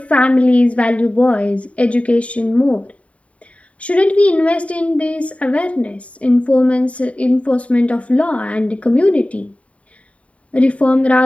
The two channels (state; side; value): late; right; 0.065 ms